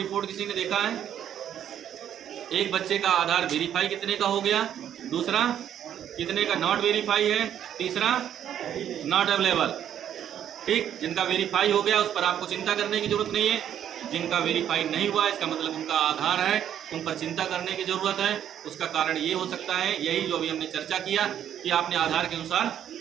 किसी ने देखा है? एक बच्चे का आधार वेरीफाई कितने का हो गया, दूसरा कितने का नॉट वेरीफाई है, तीसरा नॉट अवेलेबल। ठीक, जिनका वेरीफाई हो गया उस पर आपको चिंता करने की जरूरत नहीं है, जिनका वेरीफाई नहीं हुआ इसका मतलब उनका आधार है, उन पर चिंता करने की जरूरत है। उसका कारण ये हो सकता है, यही जो अभी हमने चर्चा किया कि आपने आधार के अनुसार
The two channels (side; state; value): left; quieter; 10.0 dB